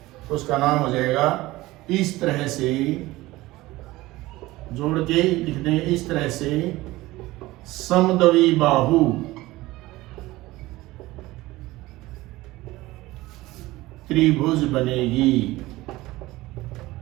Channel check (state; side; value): quieter; left; 18.7 dB